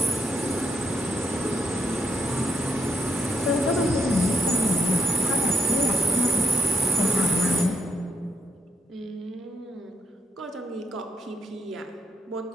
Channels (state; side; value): normal; both; correlation 0.79